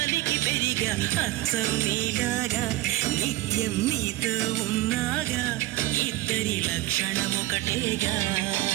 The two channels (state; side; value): quieter; left; 17.4 dB